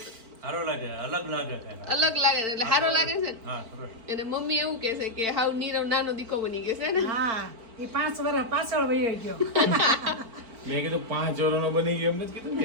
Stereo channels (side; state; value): left; late; 4.5 ms